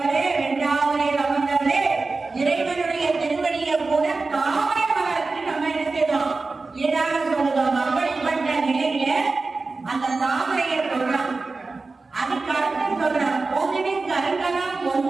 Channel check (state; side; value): quieter; left; 3.8 dB